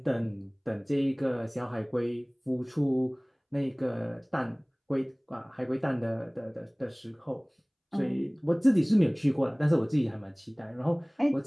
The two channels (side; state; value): both; identical; correlation 1.00